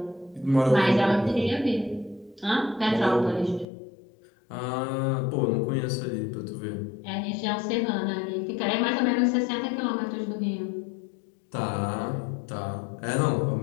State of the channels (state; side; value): drops out; right; at 3.7 s